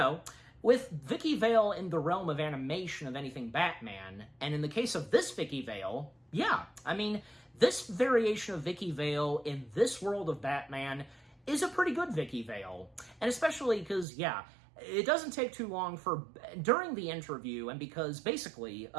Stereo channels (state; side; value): drops out; left; at 14.1 s